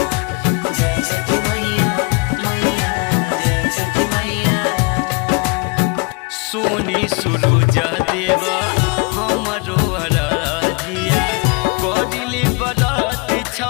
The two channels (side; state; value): right; quieter; 30.0 dB